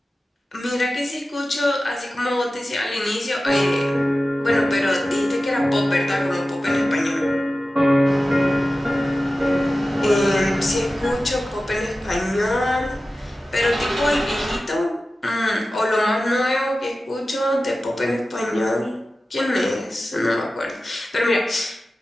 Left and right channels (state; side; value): normal; both; correlation 0.95